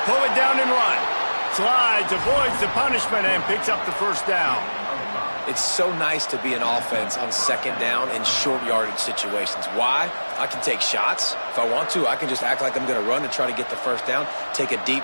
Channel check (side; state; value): both; inverted; correlation -1.00